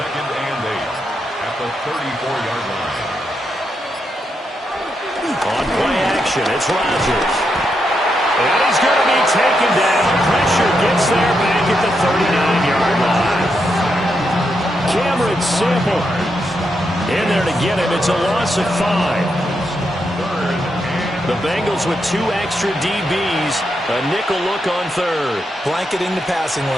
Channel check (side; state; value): both; normal; correlation 0.82